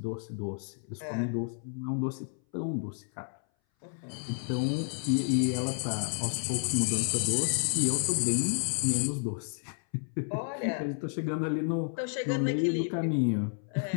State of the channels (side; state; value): right; silent; 57 dB below the other